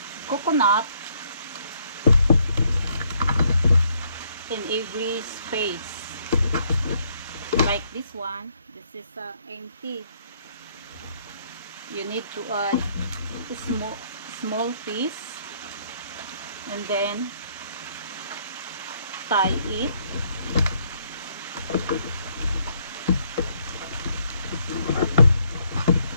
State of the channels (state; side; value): inverted; both; correlation -0.69